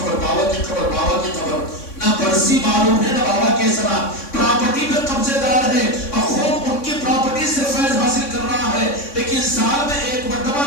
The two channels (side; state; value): right; late; 3.6 ms